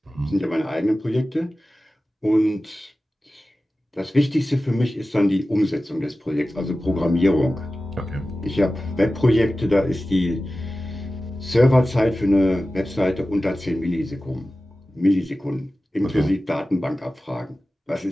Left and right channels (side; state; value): both; normal; correlation 0.95